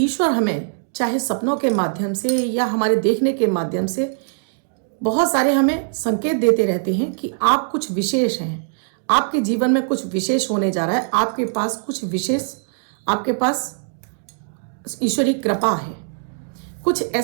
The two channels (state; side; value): silent; left; digital silence